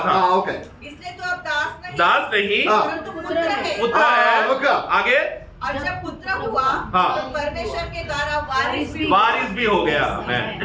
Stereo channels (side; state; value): both; identical; correlation 1.00